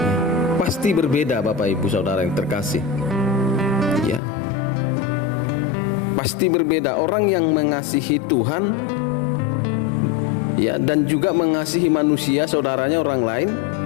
pasti berbeda, Bapak Ibu Saudara yang terkasih. Ya, pasti berbeda. Orang yang mengasihi Tuhan, ya, dan juga mengasihi manusia, saudaranya, orang lain,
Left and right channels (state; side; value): drops out; right; at 4.2 s